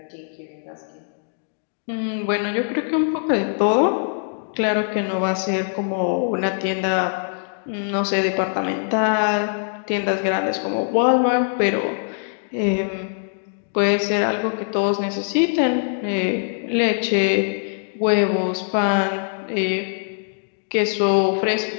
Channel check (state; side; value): silent; right; digital silence